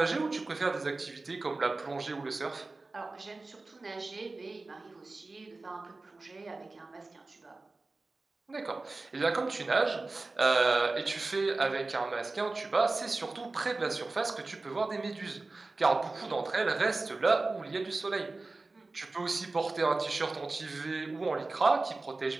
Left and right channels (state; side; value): quieter; left; 3.4 dB